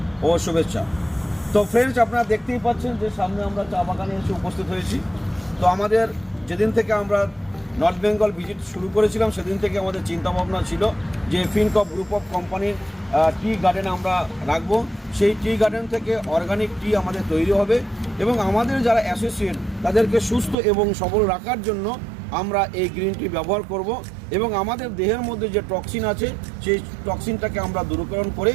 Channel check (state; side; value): drops out; left; at 20.6 s